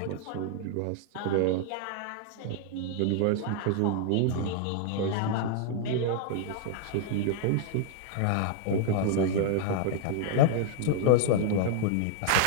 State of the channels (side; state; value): both; different; correlation 0.00